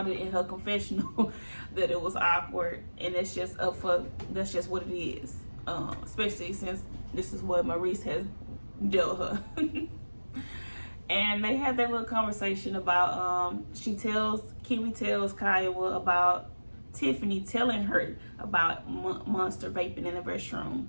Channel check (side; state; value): both; inverted; correlation -1.00